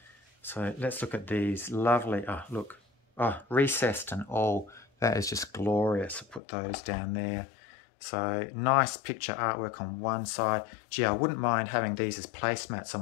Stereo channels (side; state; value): right; drops out; at 6.4 s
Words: So let's look at these lovely, look, recessed and all. That is just glorious. I'll put those down there. So nice picture artwork on one side. Gee, I wouldn't mind having these as placemats on